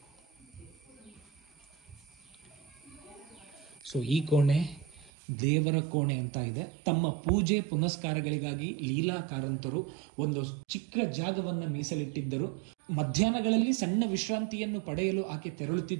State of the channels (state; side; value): drops out; left; at 5.1 s